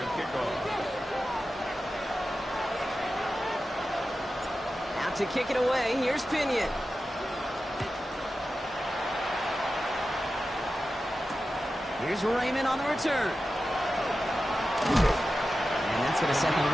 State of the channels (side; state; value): both; normal; correlation 0.93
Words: kick off. Out to kick it away, here's Pinion. Here's Raymond on the return. And that's going to set them